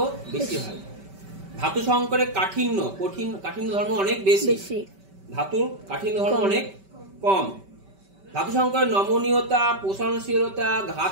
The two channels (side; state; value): left; late; 5.2 ms